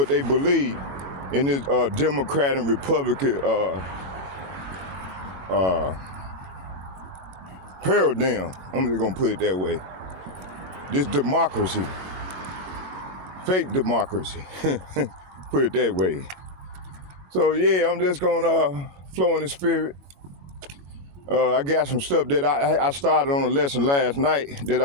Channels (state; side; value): late; left; 21 ms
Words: they believe in this Democrat and Republican paradigm. I'm just gonna put it that way. This democracy, fake democracy, put it that way. So yeah, I'm just gonna flow in the spirit. I got some stuff that I started on a lesson last night that